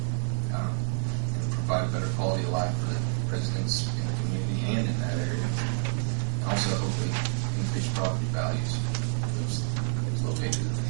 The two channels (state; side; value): silent; left; 59 dB below the other